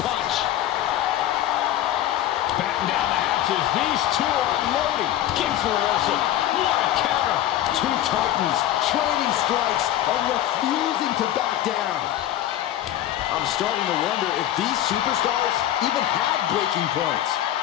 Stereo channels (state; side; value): quieter; right; 12.6 dB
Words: punch. Batten down the half matches. These two are loading. King for reversal. What a counter. Two titans trading strikes and refusing to back down. I'm starting to wonder if these superstars even have breaking points.